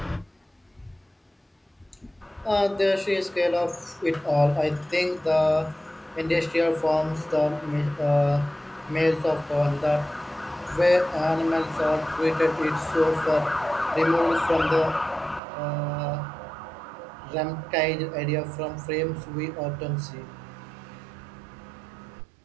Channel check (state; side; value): drops out; left; at 15.4 s